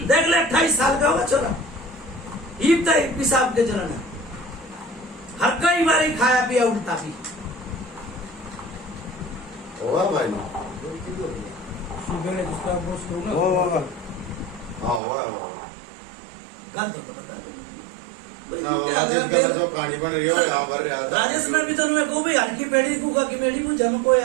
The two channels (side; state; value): left; drops out; at 15.0 s